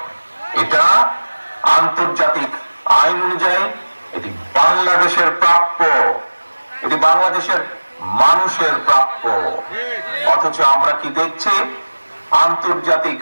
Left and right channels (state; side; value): inverted; both; correlation -1.00